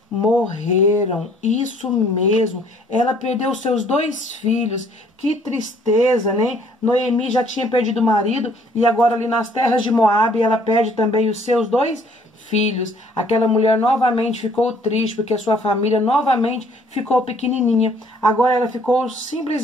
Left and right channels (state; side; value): normal; both; correlation 0.60